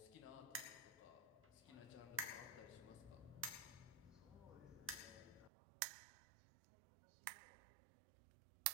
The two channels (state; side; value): drops out; left; at 5.5 s